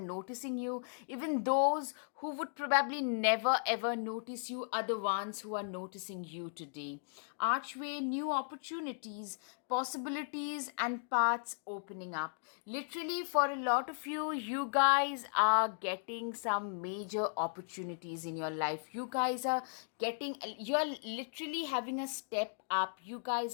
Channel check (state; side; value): silent; right; digital silence